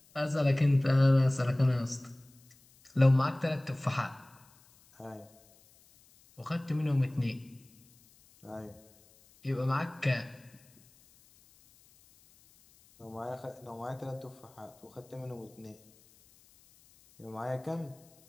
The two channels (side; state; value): left; noise; hiss, 29 dB below the sound